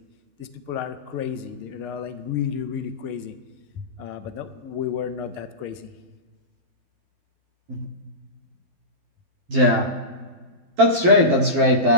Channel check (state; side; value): late; left; 12 ms